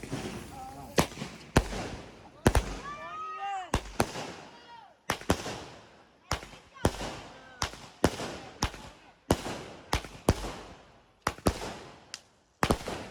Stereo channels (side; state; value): both; identical; correlation 1.00